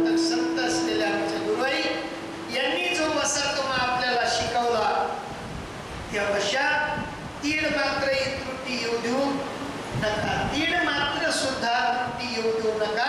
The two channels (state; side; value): identical; both; correlation 1.00